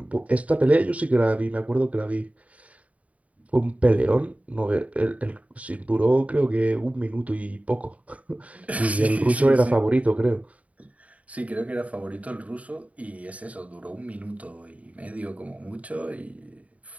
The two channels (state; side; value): late; left; 0.068 ms